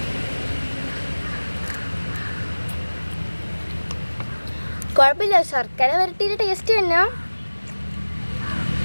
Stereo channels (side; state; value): both; inverted; correlation -1.00